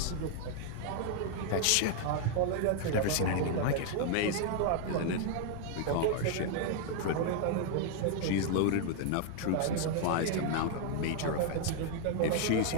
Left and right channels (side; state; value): both; different; correlation 0.00